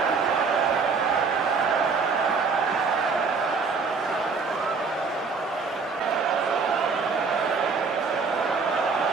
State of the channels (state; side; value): quieter; left; 4.9 dB